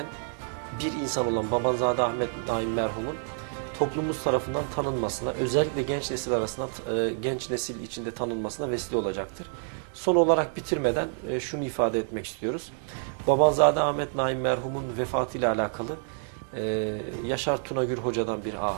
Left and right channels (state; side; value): silent; left; 59 dB below the other